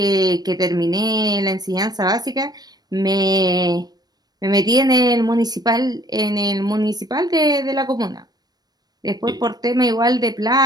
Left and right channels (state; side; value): late; left; 0.19 ms